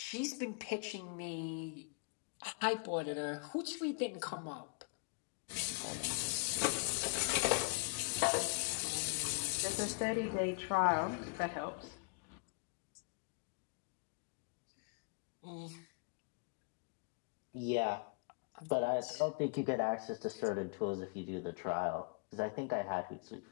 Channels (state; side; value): quieter; right; 34.7 dB